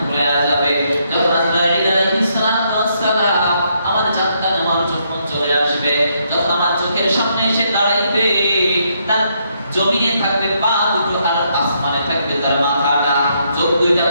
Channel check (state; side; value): inverted; both; correlation -0.75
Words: যাবে, যখন আজরাইল আলাইহিস সালাম আমার জানটা নেওয়ার জন্য চলে আসবে, যখন আমার চোখের সামনে এসে দাঁড়াইবে, তার জমিনে থাকবে পা দুটো আর আসমানে থাকবে তার মাথাটা, চোখ দুইটা